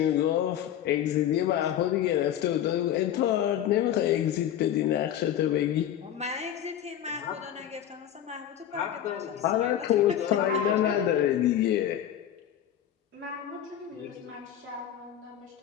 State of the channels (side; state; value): right; quieter; 10.6 dB